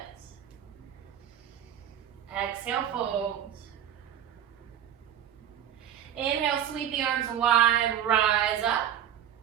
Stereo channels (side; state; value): left; quieter; 10.1 dB